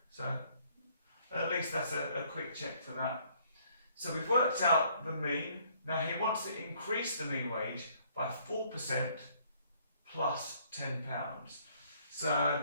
So at least that's a quick check for that. So we've worked out the mean. Now he wants to increase the mean wage by 4% plus £10.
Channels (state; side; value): inverted; both; correlation -0.63